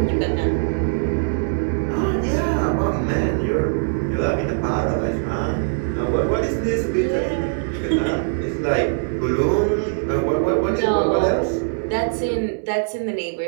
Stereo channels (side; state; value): left; silent; digital silence